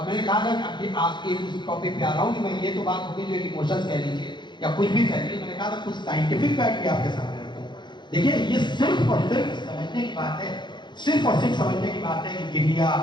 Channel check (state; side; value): late; right; 0.22 ms